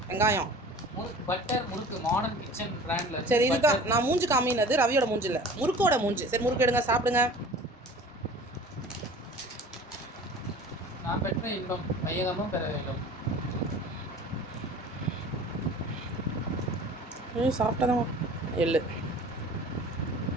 வெங்காயம் முறுக்கு, பட்டர் முறுக்கு, மாடர்ன் கிச்சன் பிராண்ட்ல. சரி, இதுதான் நான் மூஞ்சி காமினது. ரவியோட மூஞ்சி இல்லை, முறுக்கோட மூஞ்சி. சரி, முறுக்கு எடுங்க, சாப்பிடுங்க. நான் பெற்ற இன்பம் வையகமும் பெற வேண்டும். சாப்பிட்டதான். எள்ளு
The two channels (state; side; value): normal; both; correlation 0.43